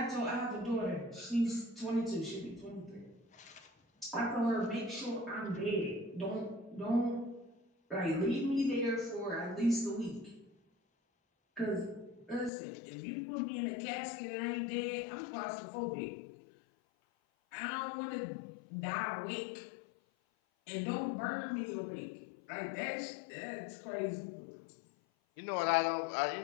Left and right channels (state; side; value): drops out; right; at 12.5 s